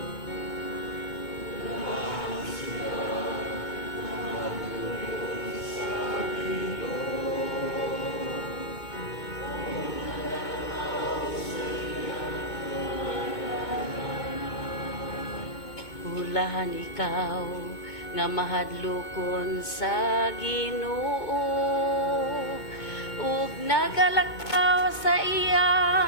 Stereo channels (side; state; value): right; late; 2.2 ms